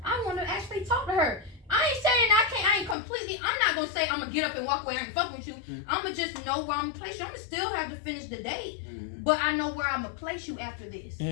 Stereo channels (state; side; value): drops out; right; at 3.0 s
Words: I want to actually talk to her. I ain't saying I ain't completely. I'm not gonna say I'm gonna get up and walk away. I ain't fucking with you. I'm gonna just know where I'm gonna place you. I'm gonna still have to finish the date, but I know where I'm gonna place you after this.